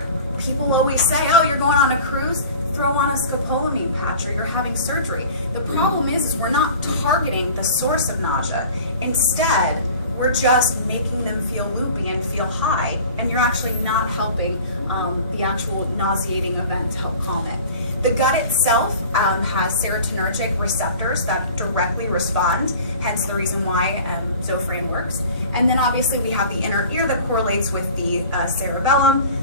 People always say, oh, you're going on a cruise, throw on a scopolamine patch, or you're having surgery. The problem is we're not targeting the source of nausea. Instead, we're just making them feel loopy and feel high, and you're actually not helping the actual nauseating event to help calm it. The gut itself has serotonergic receptors that directly respond, hence the reason why Zofran works. And then obviously we have the inner ear that correlates with the cerebellum.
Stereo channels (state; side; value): inverted; both; correlation -0.42